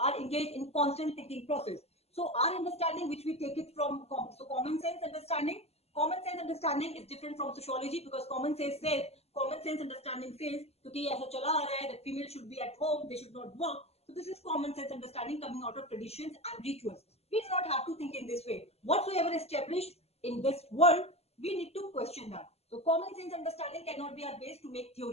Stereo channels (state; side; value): late; right; 0.30 ms